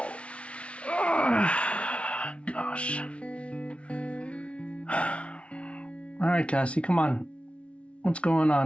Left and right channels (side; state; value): right; late; 0.061 ms